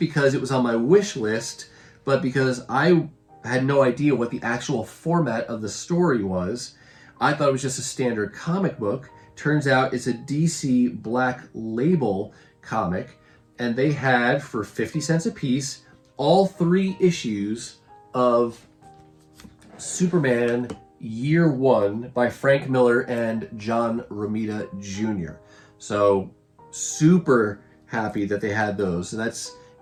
it was on my wish list, but because I had no idea what the actual format of the story was. I thought it was just a standard comic book. Turns out it's a DC Black Label comic, and they had, for 50 cents a piece, all 3 issues of Superman Year 1 by Frank Miller and John Romita Jr. So super happy that they had those. So that's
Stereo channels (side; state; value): both; identical; correlation 1.00